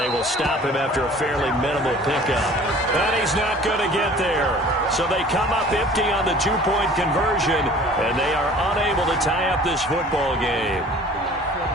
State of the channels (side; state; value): both; normal; correlation 0.48